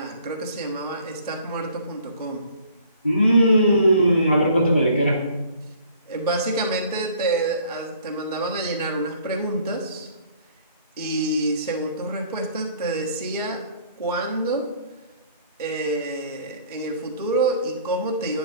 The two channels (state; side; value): inverted; both; correlation -0.55